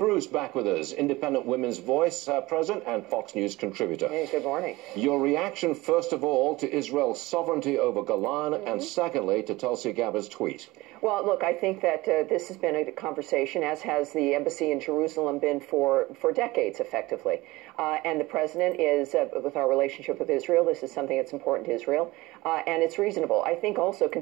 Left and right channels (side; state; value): left; quieter; 20.4 dB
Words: back with us, Independent Women's Voice president and Fox News contributor. Hey, good morning. Your reaction, first of all, to Israel's sovereignty over Golan, and secondly, to Tulsi Gabbard's tweet. Well, look, I think that this has been a conversation, as has the embassy in Jerusalem been for decades, effectively. And the president is, with our relationship with Israel, this is something that's important to Israel, and it's reasonable. I think also